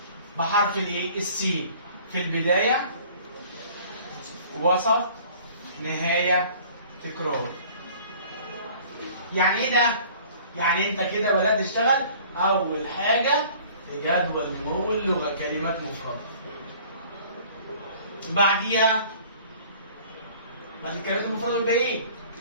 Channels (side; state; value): both; inverted; correlation -0.50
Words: بحرف الايه؟ السي في البدايه وسط نهايه تكرار. يعني ايه ده؟ يعني انت كده بدات تشتغل اول حاجه في جدول نمو اللغه كلمات مفرده. بعديها بعد الكلمات المفرده يبقى ايه؟